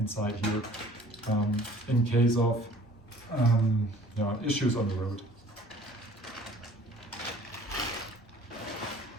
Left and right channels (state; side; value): normal; both; correlation 0.51